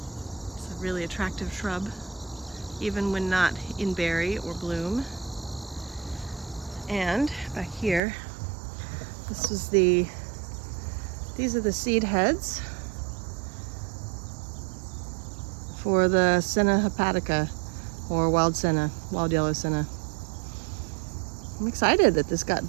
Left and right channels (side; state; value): left; drops out; at 8.0 s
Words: It's a really attractive shrub, even when not in berry or bloom. And back here, these are the seed heads for the Senna hepatica, or wild senna, wild yellow senna. I'm excited that this got